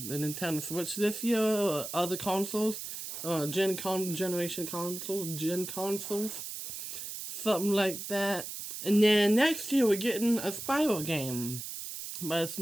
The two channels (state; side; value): noise; right; hiss, 7 dB below the sound